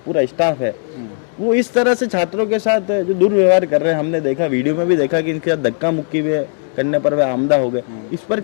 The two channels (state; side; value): silent; right; 55 dB below the other